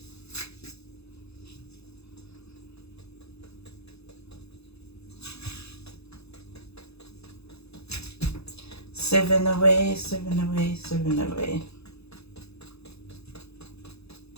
Sieving away, sieving away, sieving away.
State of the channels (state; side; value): late; right; 0.79 ms